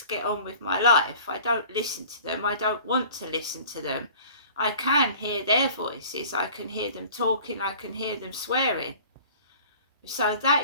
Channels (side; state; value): both; inverted; correlation -0.46